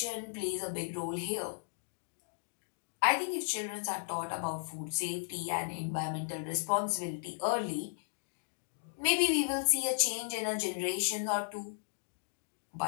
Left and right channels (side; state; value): right; silent; digital silence